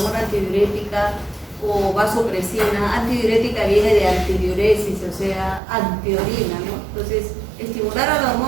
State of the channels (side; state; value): left; drops out; at 5.6 s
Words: antidiurética o vasopresina, antidiurética viene de antidiuresis, o sea, antiorina, ¿no? Entonces, estimular a la